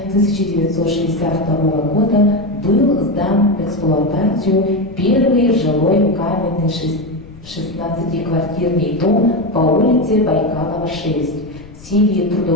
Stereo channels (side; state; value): left; noise; rumble, 19 dB below the sound